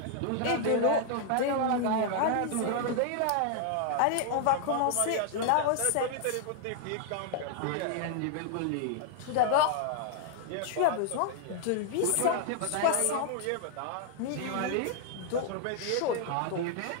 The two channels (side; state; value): both; different; correlation 0.00